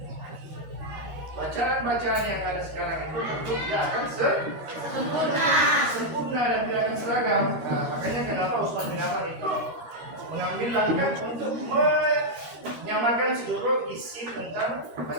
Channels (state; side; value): late; left; 13 ms